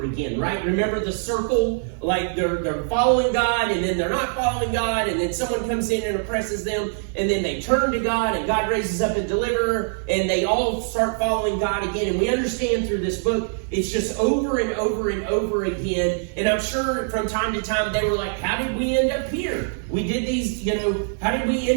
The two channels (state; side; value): silent; left; digital silence